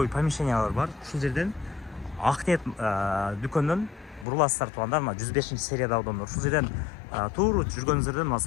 помещениялар бар. Ушул жерден Акнет дүкөндөн буруласыздар туугандар, мына 105 сериядагы домдор. Ушул жерден туура жүргөнүңүздөрдө мына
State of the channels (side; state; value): right; drops out; at 4.2 s